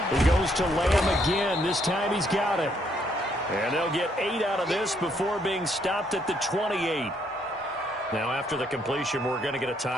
He goes to Lamb again. This time he's got it. And they'll get 8 out of this before being stopped at the 28. Now, after the completion, we're going to get a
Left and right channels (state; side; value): normal; both; correlation 0.71